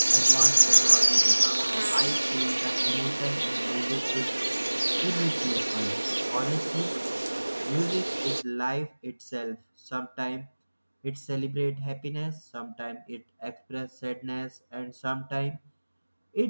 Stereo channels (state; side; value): inverted; both; correlation -1.00